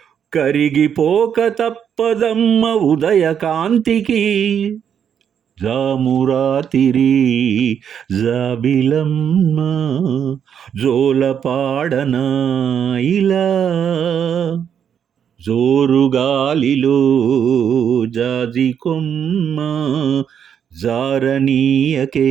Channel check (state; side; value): quieter; left; 8.2 dB